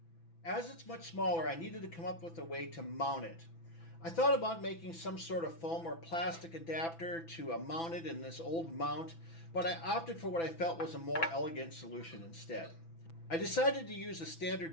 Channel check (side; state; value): right; late; 6.0 ms